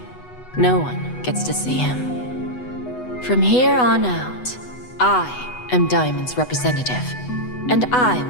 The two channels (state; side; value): late; right; 8.1 ms